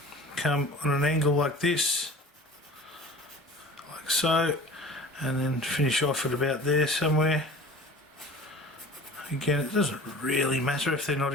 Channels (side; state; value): both; normal; correlation 0.42